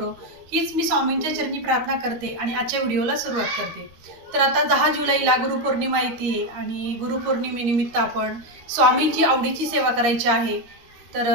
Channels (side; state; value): left; late; 13 ms